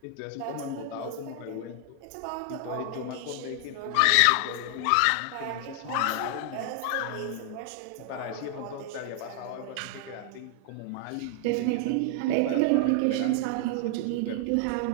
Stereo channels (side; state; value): both; different; correlation 0.00